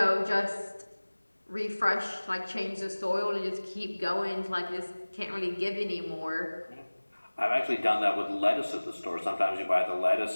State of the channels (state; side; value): inverted; both; correlation -1.00